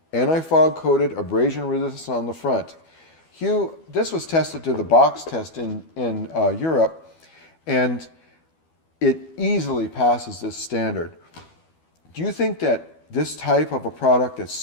anti-fog coated, abrasion resistant on the front. Hugh, this was tested to the box test in Europe, and it easily passes this standard. Do you think that this type of a product that's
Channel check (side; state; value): right; late; 12 ms